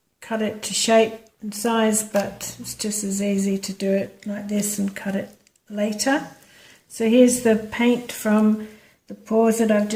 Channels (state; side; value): identical; both; correlation 1.00